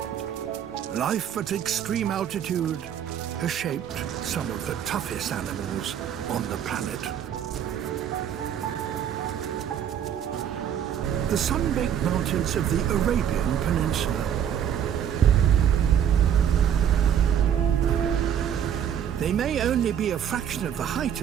Life at extreme altitude has shaped some of the toughest animals on the planet. The sun-baked mountains of the Arabian Peninsula. They may only be a fraction of the height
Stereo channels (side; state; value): left; quieter; 9.2 dB